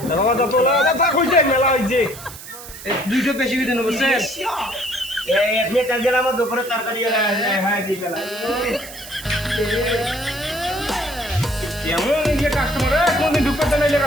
বাবা তো তোলা কথা কইছে মেলা হইছে। এই দুইটো বেশি দিন বুঝছেন? এই আপনি তেল দিলাম, আমার দুপুরে তরকারি হ্যাঁ দিয়ে গেলাম। কেমন এই যে কাস্টমার কোনদিন ঢুকতে নাইলে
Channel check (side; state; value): right; noise; hiss, 14 dB below the sound